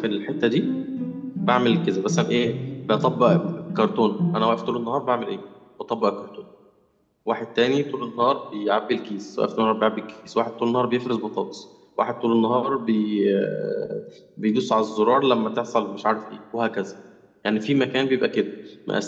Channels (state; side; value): identical; both; correlation 1.00